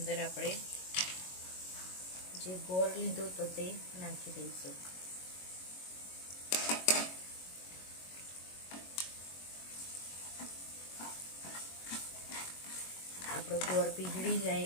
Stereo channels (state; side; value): late; right; 22 ms